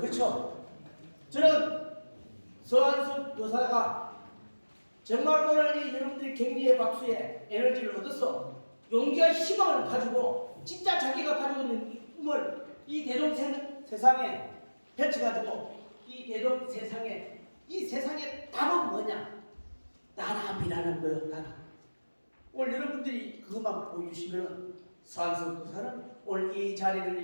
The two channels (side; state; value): both; inverted; correlation -1.00